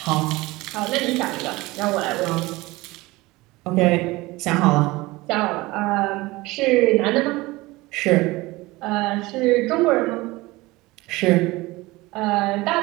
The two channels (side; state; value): left; quieter; 21.0 dB